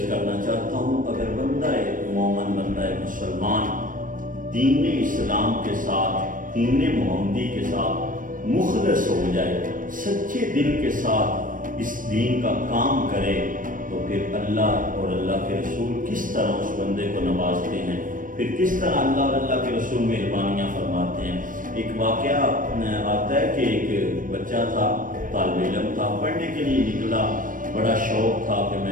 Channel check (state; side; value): late; left; 0.39 ms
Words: کرنا چاہتا ہوں، اگر بندہ مومن، بندہ مسلمان دین اسلام کے ساتھ، دین محمدی کے ساتھ مخلص ہو جائے، سچے دل کے ساتھ اس دین کا کام کرے، تو پھر اللہ اور اللہ کے رسول کس طرح اس بندے کو نوازتے ہیں، پھر کس طرح اللہ اور اللہ کے رسول مہربانیاں فرماتے ہیں۔ ایک واقعہ آتا ہے کہ ایک بچہ تھا، طالب علم تھا، پڑھنے کے لیے نکلا، بڑا شوق تھا کہ